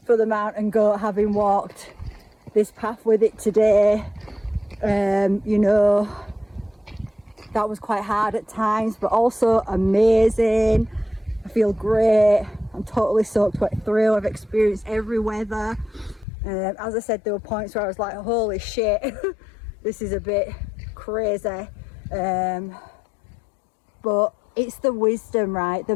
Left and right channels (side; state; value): right; drops out; at 16.2 s